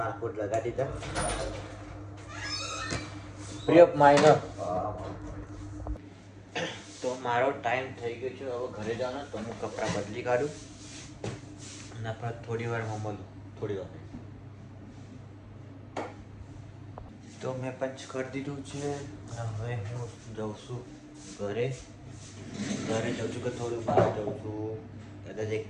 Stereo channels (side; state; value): both; identical; correlation 1.00